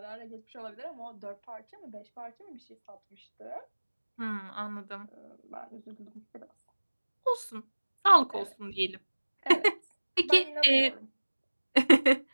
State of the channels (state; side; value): inverted; both; correlation -1.00